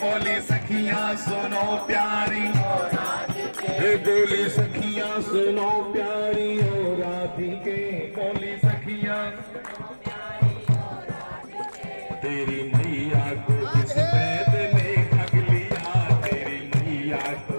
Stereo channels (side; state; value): both; inverted; correlation -1.00